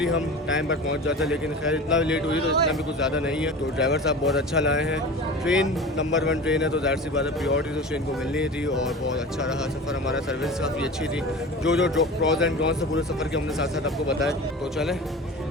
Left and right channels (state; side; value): normal; both; correlation 0.34